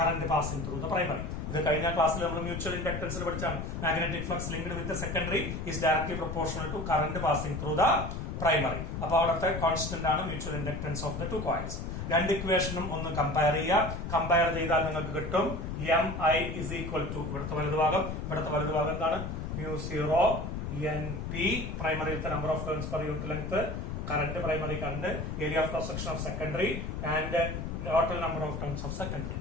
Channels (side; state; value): left; noise; rumble, 5 dB below the sound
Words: passing through the primary. ഇത് കഴിഞ്ഞ ക്ലാസ്സിൽ നമ്മൾ മ്യൂച്വൽ ഇൻഡക്ടൻസിൽ പഠിച്ചാണ്. Magnetic flux linked with the secondary is directly proportional to current passing through the primary. അപ്പൊ അവിടുത്തെ കോൺസ്റ്റന്റ് ആണ് mutual inductance of the two coils. രണ്ട് ഇക്വേഷനും ഒന്ന് കമ്പയർ ചെയ്യുക. കമ്പയർ ചെയ്താൽ നിങ്ങൾക്ക് കിട്ടും M I is equal to ഇവിടുത്തെ വലതുഭാഗം എന്താണ്? μ0 NP, പ്രൈമറിയിലത്തെ number of turns per unit length, current primary current, area of cross section of secondary and total number of turns of secondary.